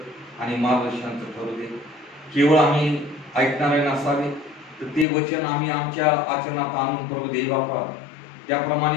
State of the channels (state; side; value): drops out; right; at 5.1 s